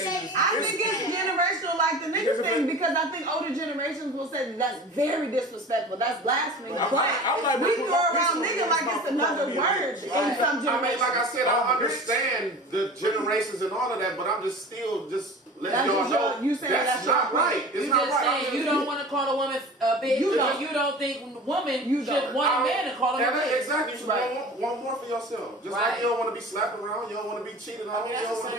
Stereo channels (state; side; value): normal; both; correlation 0.38